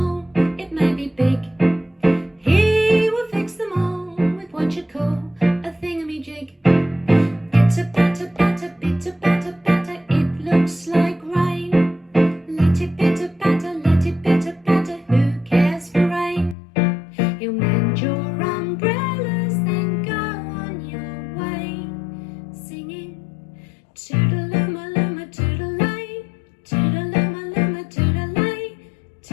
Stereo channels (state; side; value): drops out; right; at 16.6 s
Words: it may be big. He will fix them all with what you call a thingamajig. Pitter-patter-patter, pitter-patter-patter, it looks like rain. Let it pitter-patter, let it pitter-patter, who cares for rain? He'll mend your umbrellas, then go on your way, singing toodaloo-ma-loo-ma, toodalay, toodaloo-ma-loo-ma, toodalay,